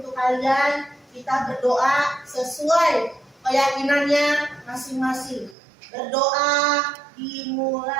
kalian kita berdoa sesuai keyakinannya masing-masing. Berdoa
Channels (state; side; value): drops out; left; at 5.6 s